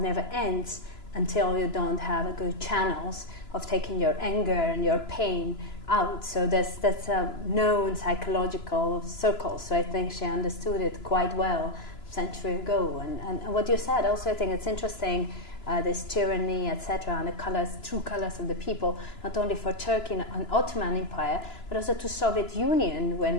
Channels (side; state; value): right; late; 2.9 ms